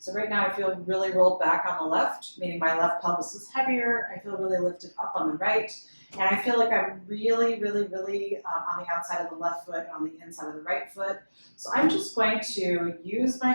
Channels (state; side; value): inverted; both; correlation -1.00